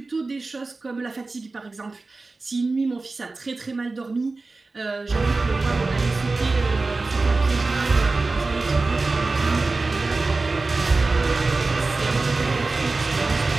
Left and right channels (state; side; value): quieter; left; 3.6 dB